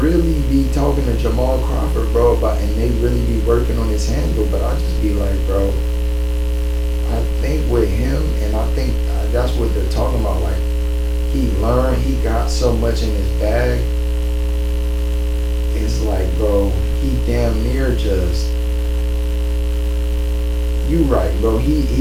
really be talking to Jamal Crawford, bro, about, and they really be working on his handle. But I just be like, bro, I think with him, and I think that's what they're talking about. Like he learned, he got so much in his bag. It's like, bro, he damn near just. You right, bro.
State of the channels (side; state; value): both; identical; correlation 1.00